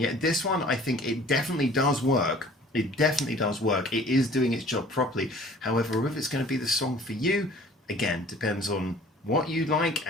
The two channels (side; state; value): both; normal; correlation 0.50